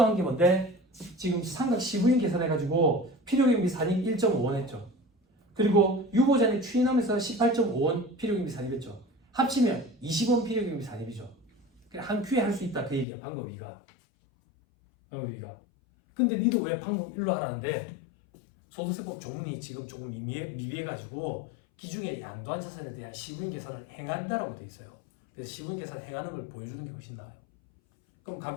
한 게 뭔데? 지금 삼각 시부인 계산해가지고 필요경비 산입 1.5원 했죠. 그리고 유보잔액 추인하면서 18.5원 필요경비 산입했죠. 합치면 20원 필요경비 산입이죠. 한 큐에 할 수 있다 그 얘기야. 방법 2가. 방법 2가. 근데 니도 왜 방법 1로 하라는데? 소득세법 조문이 지금 조금 미비해가지고 기중에 양도한 자산에 대한 시부인 계산을 행한다라고 돼 있어요. 그래서 시부인 계산을 행하는 걸 보여주는 게 훨씬 나아요. 그럼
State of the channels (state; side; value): drops out; right; at 13.1 s